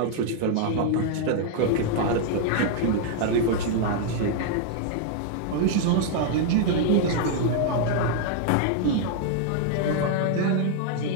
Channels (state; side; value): different; both; correlation 0.00